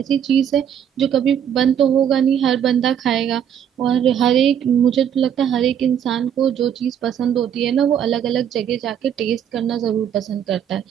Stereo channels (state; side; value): quieter; left; 9.0 dB